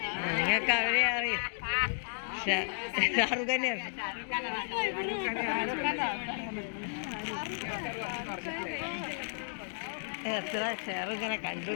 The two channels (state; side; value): silent; right; digital silence